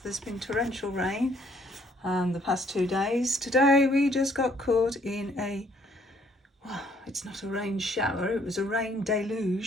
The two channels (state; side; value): normal; both; correlation 0.65